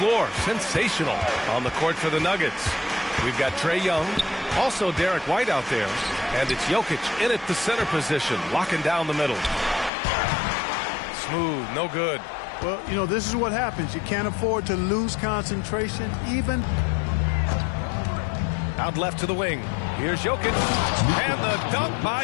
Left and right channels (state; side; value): drops out; right; at 9.9 s